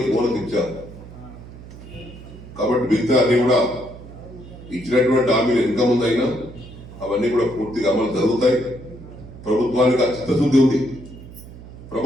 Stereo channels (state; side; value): noise; right; hum, 16 dB below the sound